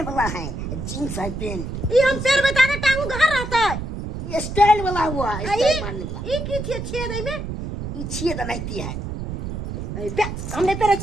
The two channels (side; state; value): right; noise; rumble, 6 dB below the sound